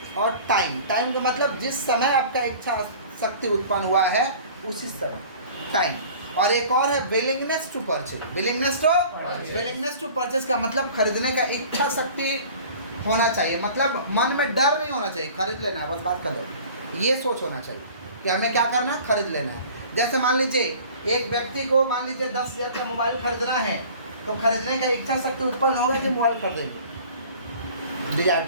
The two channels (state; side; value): inverted; both; correlation -0.45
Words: और टाइम। टाइम का मतलब जिस समय आपका इच्छा शक्ति उत्पन्न हुआ है उसी समय, टाइम। और एक और है willingness to purchase. Willingness to purchase का मतलब खरीदने का इच्छा शक्ति होना चाहिए। मतलब मन में डर नहीं होना चाहिए, खरीद लेना है बस, बात कर लो। ये सोच होना चाहिए कि हमें क्या करना है? खरीद लेना है। जैसे मान लीजिए एक व्यक्ति को मान लीजिए 10,000 का मोबाइल खरीदना है, तो खरीदने का इच्छा शक्ति उत्पन्न होगा कि मोबाइल खरीदेंगे। डिजायर